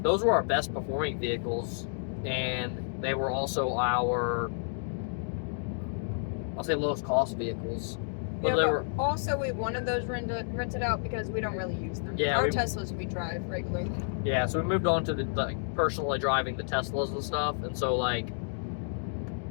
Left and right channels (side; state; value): right; silent; digital silence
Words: those were our best performing vehicles, and they were also our, I'll say, lowest cost vehicles. But also we wanted those rented out because we don't really use them. Yeah, our Teslas we drive regularly. Yeah, so we moved on to the personally driving the Teslas and stuff, and so like